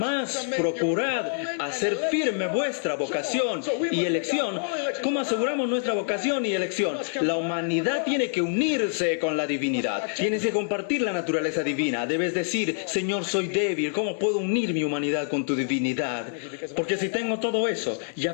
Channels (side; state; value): right; silent; digital silence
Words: procurad hacer firme vuestra vocación y elección. ¿Cómo aseguramos nuestra vocación y elección? La humanidad tiene que unirse con la divinidad. Tienes que compartir la naturaleza divina. Debes decir, Señor, soy débil. ¿Cómo puedo unir mi humanidad con tu divinidad? Porque si tengo todo eso,